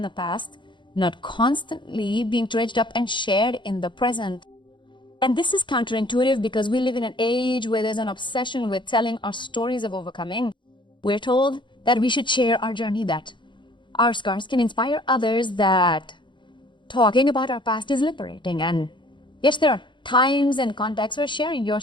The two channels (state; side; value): late; right; 0.23 ms